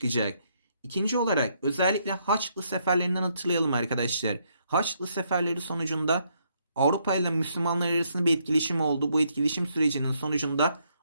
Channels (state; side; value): inverted; both; correlation -0.73